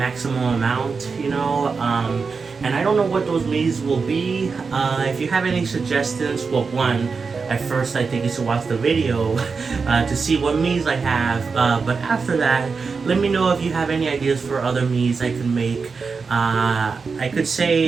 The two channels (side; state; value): left; quieter; 4.9 dB